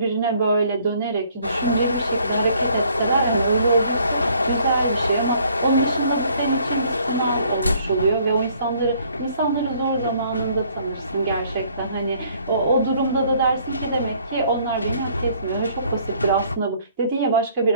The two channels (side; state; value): both; inverted; correlation -0.61